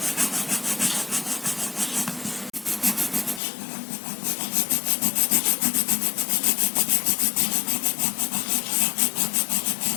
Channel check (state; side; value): drops out; right; at 3.4 s